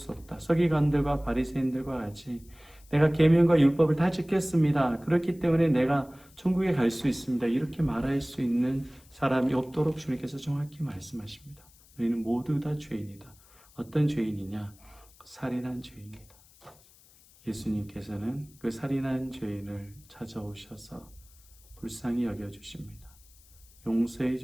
없다. 서기관들과 바리새인들과 같이 내가 계명과 율법을 다 지켰습니다. 그렇기 때문에 내가 천국에 갈 수 있습니다. 이렇게 말할 수 있는 사람이 없도록 주님께서 정확히 말씀하십니다. 너희는 모두 다 죄인이다. 어떤 죄인이냐? 살인한 죄인이다. 예수님께서는 그 살인한 죄인을 찾아오셔서 불쌍히 여겨주십니다. 용서해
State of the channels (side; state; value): left; noise; hiss, 27 dB below the sound